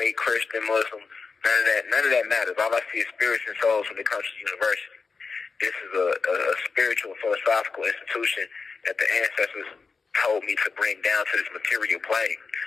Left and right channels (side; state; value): right; quieter; 4.7 dB